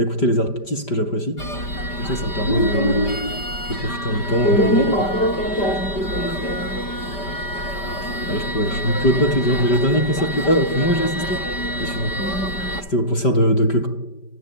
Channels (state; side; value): late; right; 5.1 ms